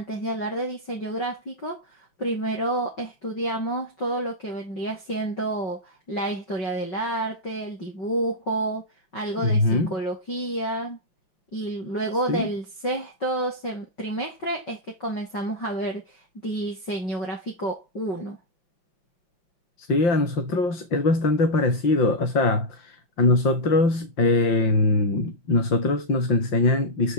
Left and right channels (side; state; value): right; late; 5.2 ms